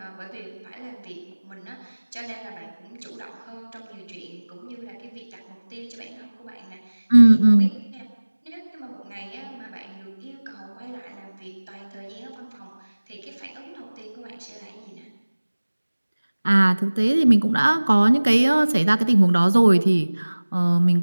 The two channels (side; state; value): both; inverted; correlation -1.00